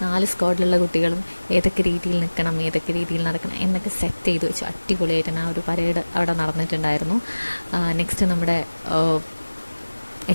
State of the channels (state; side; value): inverted; both; correlation -1.00